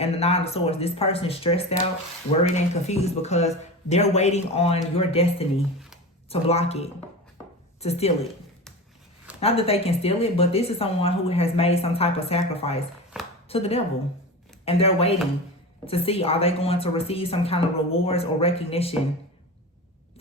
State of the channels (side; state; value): both; normal; correlation 0.28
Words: the 9 of Swords, this person is stressed out, worried, and confused because they're waiting on your destiny to block it, to steal it. Not that they can steal it, but this is someone who has made some type of sacrifice to the devil. And they're waiting to see, are they going to receive some kind of rewards or recognition